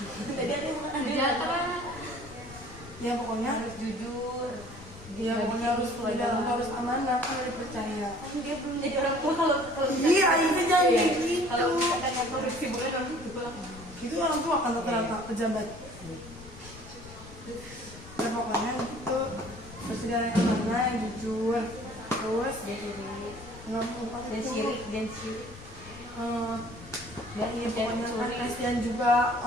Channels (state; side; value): noise; left; rumble, 16 dB below the sound